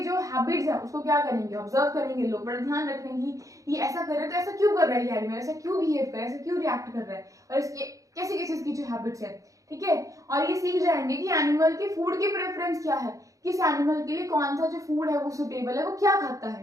जो हैबिट्स है उसको क्या करेंगे, ऑब्जर्व करेंगे लोग, बड़ा ध्यान रखेंगे ये ऐसा कर रहे हैं तो ऐसा क्यों कर रहा है ये एनिमल, ऐसा क्यों बिहेव कर रहा है, ऐसा क्यों रिएक्ट कर रहा है, और इसके कैसे कैसे इसकी जो हैबिट्स है। ठीक है, और ये सीख जाएंगे कि एनिमल की फूड की प्रेफरेंस क्या है, किस एनिमल के लिए कौन सा जो फूड है वो सुटेबल है, वो क्या खाता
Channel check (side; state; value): left; late; 0.16 ms